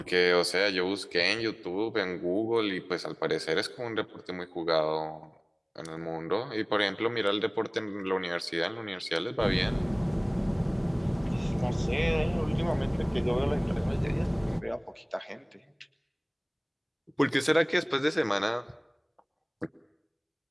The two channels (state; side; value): identical; both; correlation 1.00